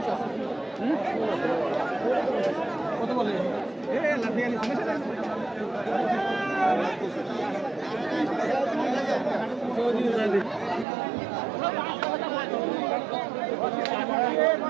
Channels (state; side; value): drops out; left; at 10.9 s